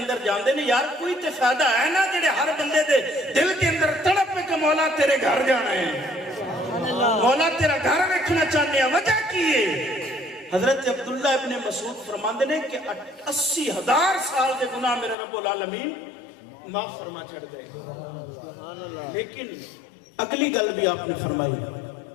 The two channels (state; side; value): drops out; right; at 15.2 s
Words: جاندے نے۔ یار کوئی تے فائدہ ہے نا جڑے ہر بندے دے دل کے اندر تڑپ پہ کہ مولا تیرے گھر جانا ہے، مولا تیرا گھر رکھنا چاہنے ہیں، وجہ کی ہے؟ حضرت عبداللہ ابن مسعود فرماندے نے کہ 80,000 سال دے گناہ میرے رب العالمین معاف فرما چھڑ دے۔ لیکن اگلی گل بھی آپ نے فرمائی،